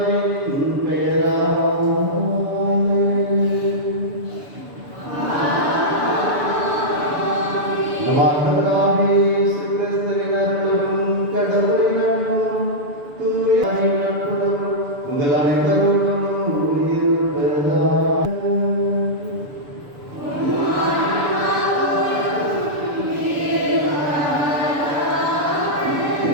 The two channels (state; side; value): late; left; 7.0 ms